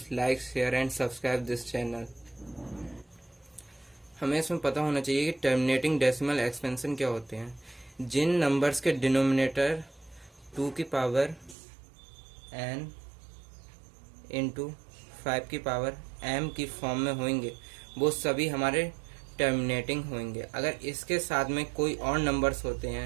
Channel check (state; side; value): drops out; left; at 11.6 s